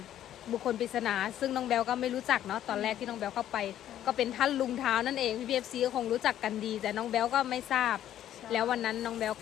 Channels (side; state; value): right; quieter; 11.6 dB